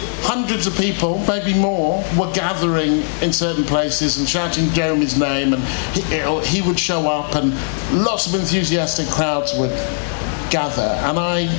hundreds of people, maybe more, were gathering in certain places and shouting Jeremy's name, and he would show up, and lots of enthusiastic crowds would gather. And I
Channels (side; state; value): right; silent; 67 dB below the other